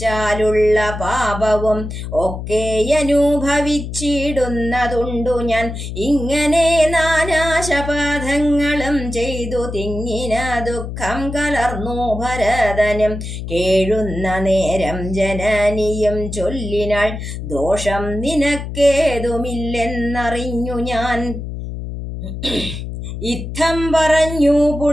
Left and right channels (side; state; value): left; noise; hum, 7 dB below the sound